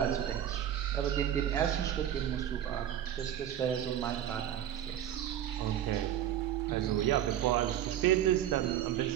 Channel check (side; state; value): left; quieter; 10.9 dB